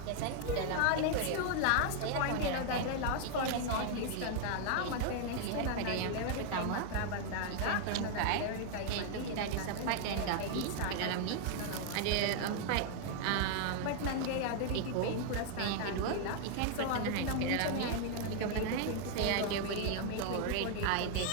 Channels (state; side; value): different; both; correlation 0.00